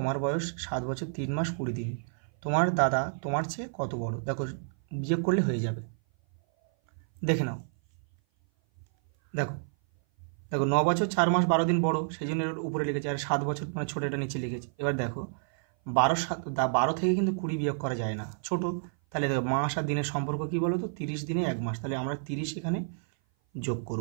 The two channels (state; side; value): silent; left; 56 dB below the other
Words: বয়স 7 বছর 3 মাস 20 দিন, তোমার দাদা তোমার চেয়ে কত বড়? দেখো বিয়োগ করলে হয়ে যাবে, দেখে নাও। দেখো 9 বছর 4 মাস 12 দিন বড়, সেই জন্য এর উপরে লিখেছে, আর 7 বছর মানে ছোটো, এটা নিচে লিখেছে। এবার দেখো 12 থেকে কিন্তু 20 বিয়োগ করা যায় না, ছোট। তাহলে দেখো মাস আর দিনের সম্পর্ক কী বলো তো? 30 দিনে 1 মাস, তাহলে আমরা 30 এখানে যোগ